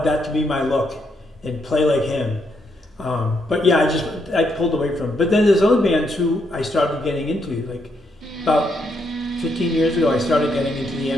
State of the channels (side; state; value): both; normal; correlation 0.77